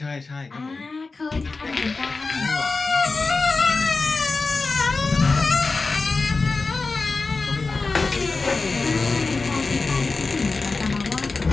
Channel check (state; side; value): quieter; right; 3.9 dB